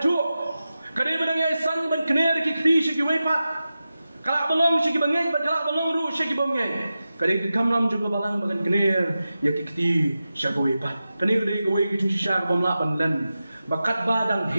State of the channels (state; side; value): inverted; both; correlation -0.93